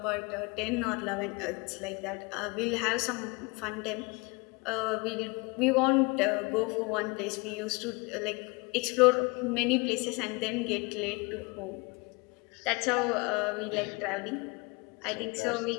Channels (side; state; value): right; quieter; 27.9 dB